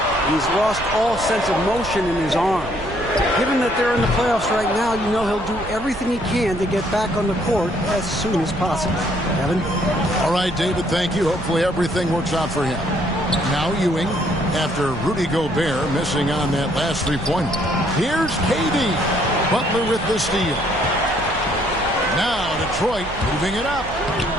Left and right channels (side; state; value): right; noise; rumble, 13 dB below the sound